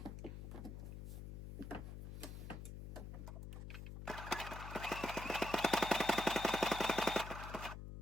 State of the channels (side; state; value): left; noise; hum, 8 dB below the sound